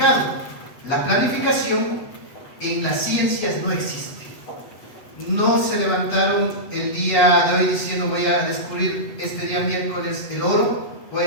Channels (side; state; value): right; late; 8.0 ms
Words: La planificación en las ciencias no existe. No se levantaron el día de hoy diciendo voy a descubrir este día miércoles el oro, voy a